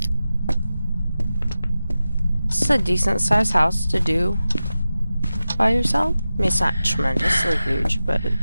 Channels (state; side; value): inverted; both; correlation -0.94